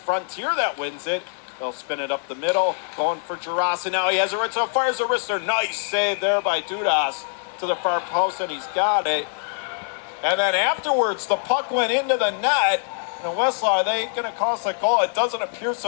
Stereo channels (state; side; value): silent; right; digital silence